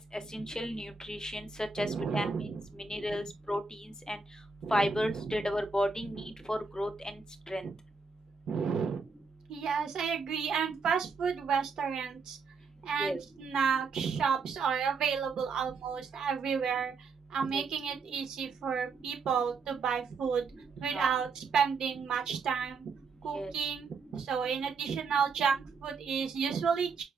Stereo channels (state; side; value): quieter; left; 4.7 dB